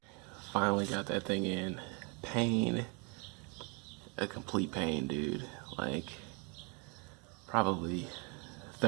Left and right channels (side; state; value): left; quieter; 33.1 dB